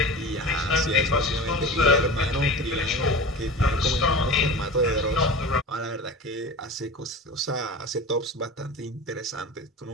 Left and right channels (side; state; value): both; normal; correlation 0.33